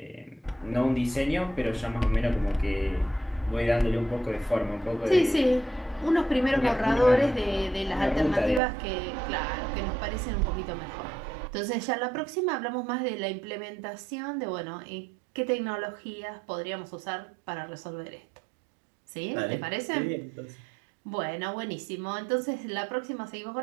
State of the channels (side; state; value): left; drops out; at 8.6 s